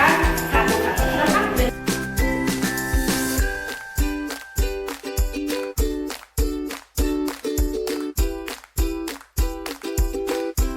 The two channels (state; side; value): identical; both; correlation 1.00